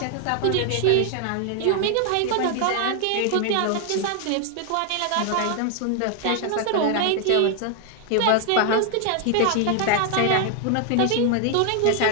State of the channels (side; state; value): both; different; correlation 0.00